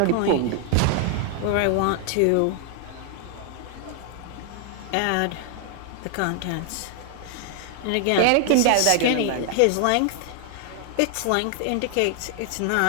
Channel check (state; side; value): different; both; correlation 0.00